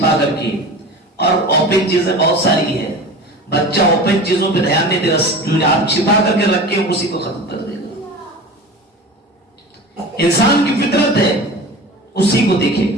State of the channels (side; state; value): both; normal; correlation 0.35